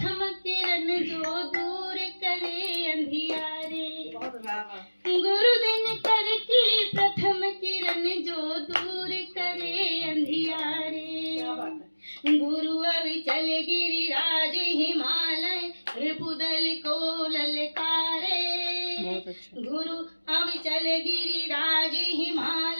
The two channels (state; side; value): inverted; both; correlation -1.00